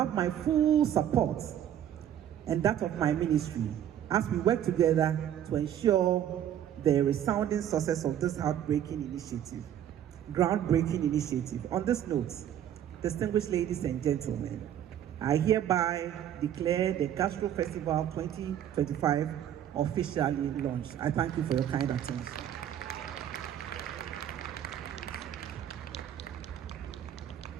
my full support and that of my ministry as we work together to ensure the resounding success of this groundbreaking initiative. On this note, distinguished ladies and gentlemen, I hereby declare the Gastro Festival 2025 officially launched. I thank you for your kind attention.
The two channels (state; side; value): quieter; left; 10.4 dB